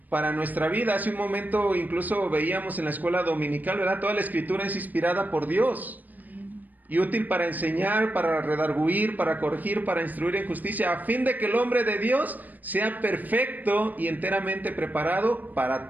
para nuestra vida. Hace un momento incluso veíamos en la escuela dominical, ¿verdad? Toda la escritura es inspirada por Dios y útil para enseñar, para redarguir, para corregir, para instruir en justicia, a fin de que el hombre de Dios sea perfecto y enteramente preparado para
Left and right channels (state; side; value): late; left; 0.084 ms